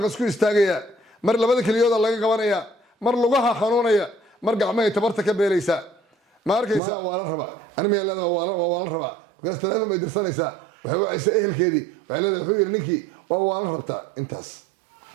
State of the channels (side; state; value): left; drops out; at 6.8 s